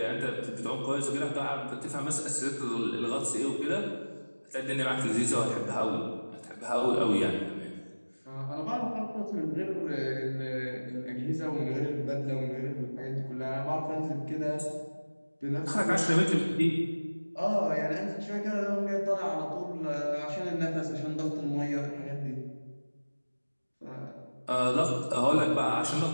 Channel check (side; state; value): both; inverted; correlation -1.00